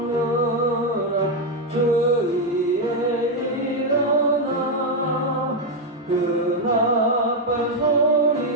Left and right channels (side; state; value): both; normal; correlation 0.03